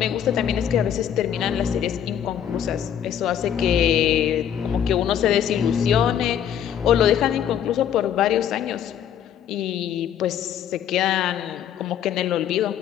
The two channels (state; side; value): quieter; right; 9.5 dB